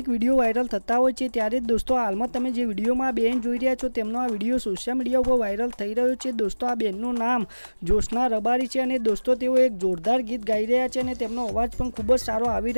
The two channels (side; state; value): both; inverted; correlation -1.00